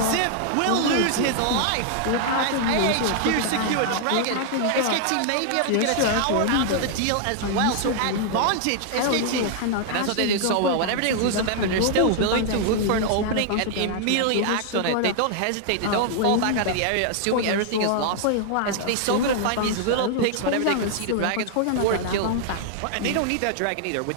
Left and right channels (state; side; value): different; both; correlation -0.01